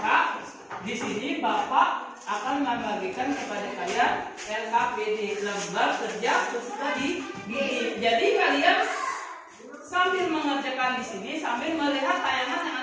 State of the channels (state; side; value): identical; both; correlation 1.00